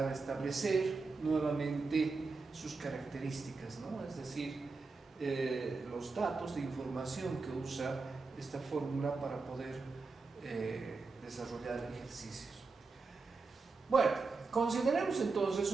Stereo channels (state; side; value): quieter; left; 4.1 dB